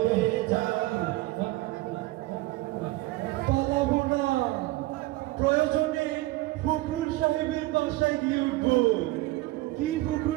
যাও পালাবো না প্রয়োজনে ফখরুল সাহেবের বাসায় গিয়ে উঠবো কি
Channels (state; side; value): quieter; left; 19.0 dB